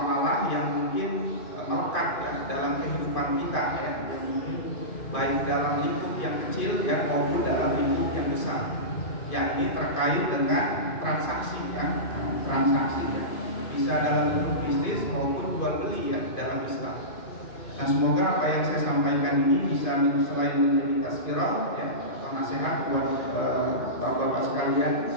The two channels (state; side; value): late; right; 2.5 ms